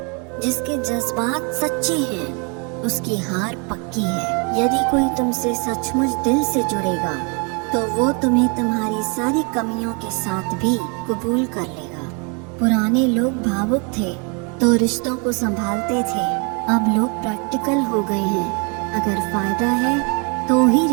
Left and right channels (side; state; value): left; quieter; 34.3 dB